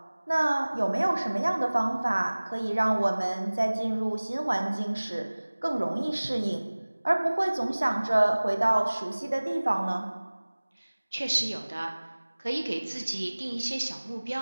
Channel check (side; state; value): both; inverted; correlation -1.00